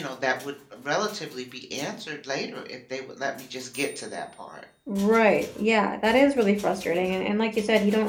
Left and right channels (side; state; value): both; identical; correlation 1.00